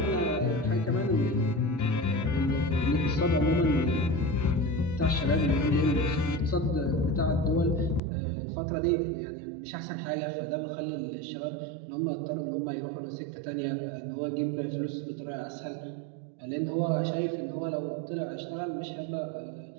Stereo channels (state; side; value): drops out; left; at 8.0 s